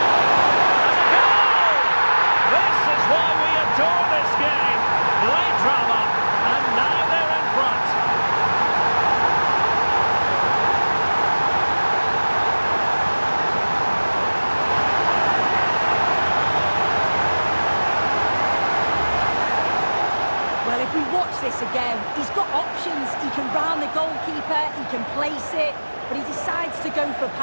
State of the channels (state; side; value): inverted; both; correlation -1.00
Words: This is why we adore this game. Late drama, and now they're in front. Well, if we watch this again, he's got options. He can round the goalkeeper, he can place it, but he decides to go for